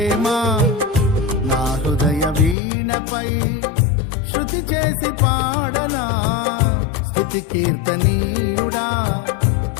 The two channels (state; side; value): drops out; right; at 2.6 s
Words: నా హృదయ వీణపై శృతి చేసి పాడనా. స్తుతి కీర్తనీయుడా